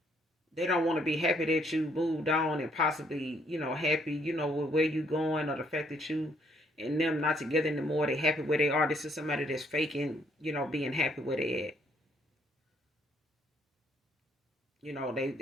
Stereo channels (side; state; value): both; normal; correlation 0.67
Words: they don't want to be happy that you moved on and possibly, happy, with where you going or the fact that you and them not together anymore. They happy where they are. This is somebody that's faking, being happy where they at.